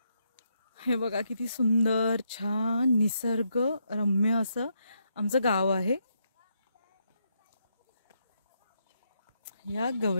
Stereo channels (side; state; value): both; inverted; correlation -0.79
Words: हे बघा किती सुंदर छान निसर्ग रम्य असं आमचं गाव आहे. या